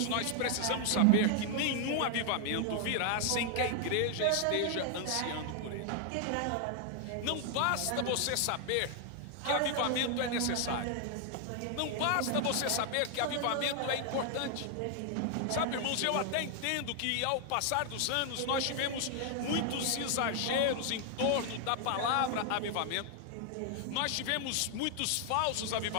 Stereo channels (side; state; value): both; different; correlation 0.00